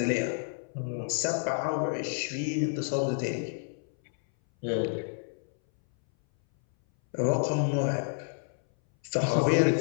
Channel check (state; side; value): silent; right; 58 dB below the other